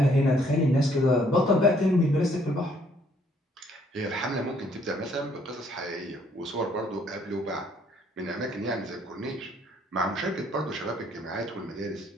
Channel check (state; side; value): normal; both; correlation 0.65